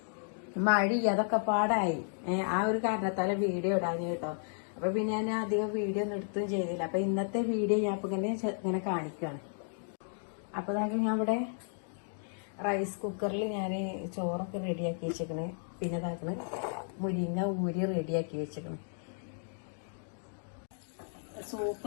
മഴ അതൊക്കെ പാടായി. ആ ഒരു കാരണത്താല വീഡിയോ ഇടാന് കേട്ടോ. അപ്പൊ പിന്നെ ഞാൻ അധികം വീഡിയോ ഒന്നും എടുത്തും ചെയ്തില്ല. അപ്പൊ ഇന്നത്തെ വീഡിയോ ഞാൻ ഇപ്പൊ ഇങ്ങനെ കാണിക്കുകയാണ്. അപ്പൊ ഞാൻ ഇവിടെ റൈസ് കുക്കറിൽ ഞാൻ ചോറൊക്കെ റെഡിയാക്കി വെച്ചേക്കണ്. പിന്നെ ഇതാക്കണ് മുരിങ്ങ ഊരി റെഡിയാക്കി വെച്ചേക്കണ്. സൂപ്പ്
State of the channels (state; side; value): silent; right; digital silence